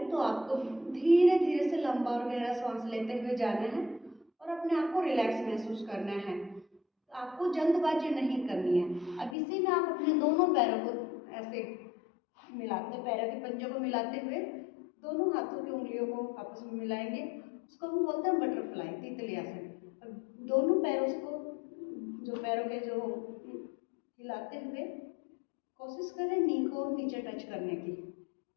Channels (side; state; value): right; drops out; at 9.3 s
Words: तो आपको धीरे धीरे से लंबा और गहरा सांस लेते हुए जाना है और अपने आप को रिलैक्स महसूस करना है, आपको जल्दबाजी नहीं करनी है। अब इसी में आप अपने दोनों पैरों को ऐसे मिलाते, पैरों के पंजों को मिलाते हुए दोनों हाथों की उंगलियों को आपस में मिलाएंगे, उसको हम बोलते हैं बटरफ्लाई, तितली आसन। अब दोनों पैरों को, जो पैरों के जो हिलाते हुए कोशिश करें नी को नीचे टच करने की।